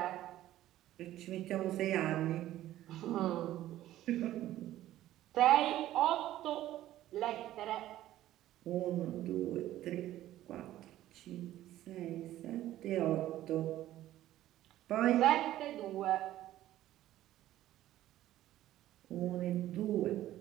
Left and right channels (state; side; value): quieter; left; 13.9 dB